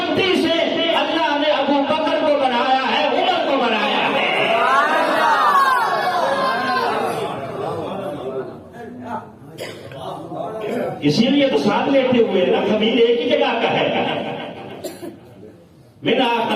اسی لیے تو ساتھ لیتے ہوئے نا، خمیر ایک ہی جگہ کا ہے. منہا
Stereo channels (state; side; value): identical; both; correlation 1.00